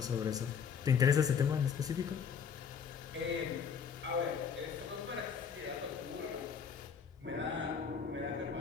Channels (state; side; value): quieter; right; 6.8 dB